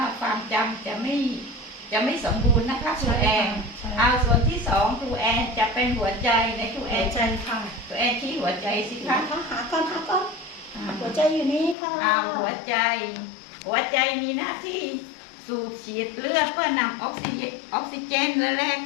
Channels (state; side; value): drops out; right; at 11.8 s